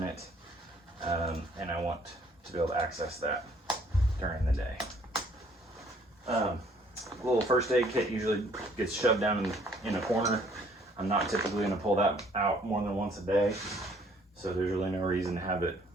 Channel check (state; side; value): normal; both; correlation 0.61